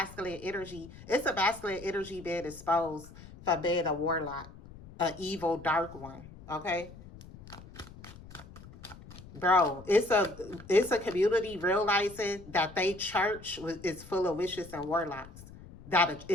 energy. It's a masculine energy being exposed for being a warlock, an evil, dark one. Okay? Bro, it's a community realizing that they church is full of witches and warlocks.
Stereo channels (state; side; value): noise; left; rumble, 18 dB below the sound